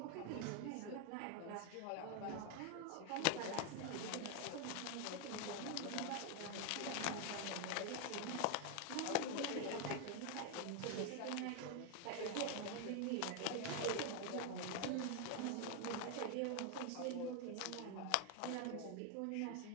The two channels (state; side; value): different; both; correlation 0.01